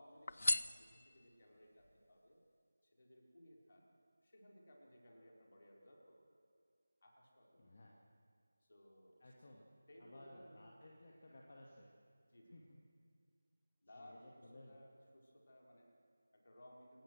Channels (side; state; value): both; inverted; correlation -0.97